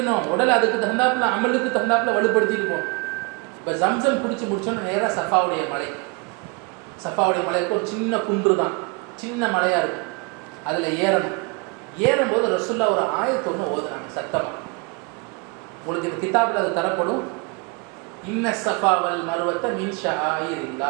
உடல் அதுக்கு தகுந்தாப்புல, அமலுக்கு தகுந்தாப்புல வலுப்படுத்திட்டு போகணும். இப்போ ஜம்சம் குடிச்சு முடிச்சோன்னா நேராக சஃபாவுடைய மலை. சஃபாவுடைய மலைக்கு ஒரு சின்ன குன்று தான், சின்ன மலையாக இருக்கும். அதில் ஏறணும். ஏறும்போது ரசூல்லா ஒரு ஆயத்தை ஒன்று ஓதுனாங்க சத்தமாக. உங்களுக்கு இந்த கிதாபில் அது தரப்படும். இன்ன சஃபா வல் மர்வத்த மின்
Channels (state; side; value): quieter; left; 29.5 dB